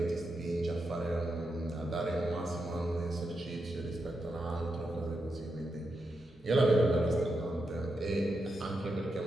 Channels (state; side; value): normal; both; correlation 0.85